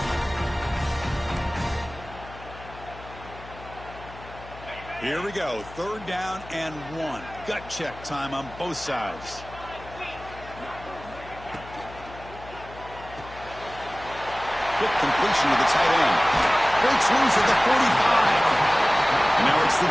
Here we go. 3rd down and 1. Gut check time on both sides. Quick completion to the tight end. Breaks loose at the 45. And now it's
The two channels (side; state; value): left; noise; hum, 17 dB below the sound